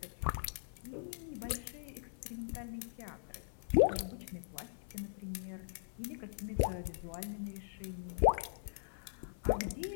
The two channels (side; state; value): right; silent; 51 dB below the other